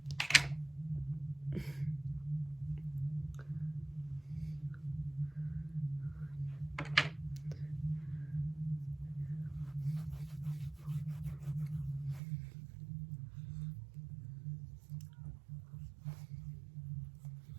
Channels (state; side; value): drops out; left; at 12.2 s